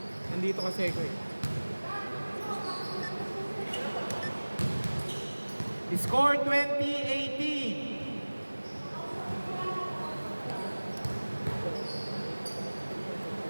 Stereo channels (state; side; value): inverted; both; correlation -1.00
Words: Nandito kasi ko eh. Score 20-18.